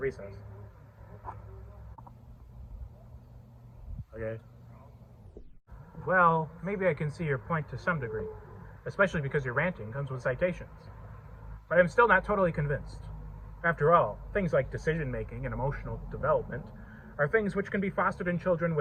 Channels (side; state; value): both; identical; correlation 1.00